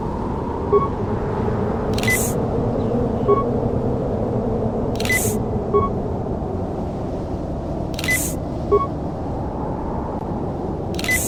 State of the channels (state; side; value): identical; both; correlation 1.00